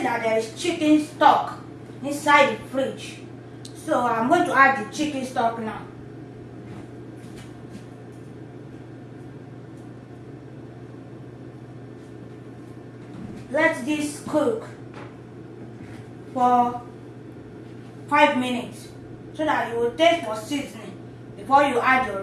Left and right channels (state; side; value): identical; both; correlation 1.00